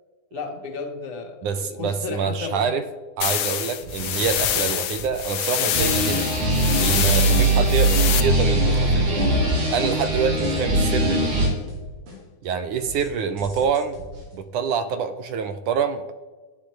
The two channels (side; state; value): left; late; 9.9 ms